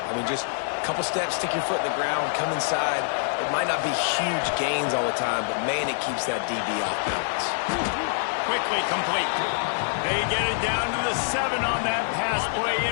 I mean, just a couple steps, stick your foot in the ground, come inside. It might not be huge gains all the time, but, man, it keeps that DB off balance. Quickly complete. They get it down to the 7 on that pass play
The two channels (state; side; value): silent; right; digital silence